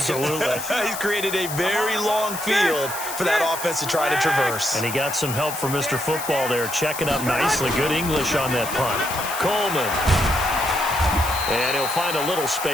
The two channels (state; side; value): noise; left; hiss, 8 dB below the sound